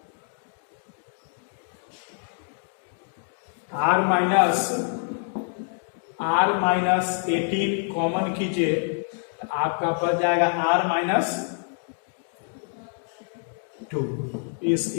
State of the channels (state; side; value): silent; right; 61 dB below the other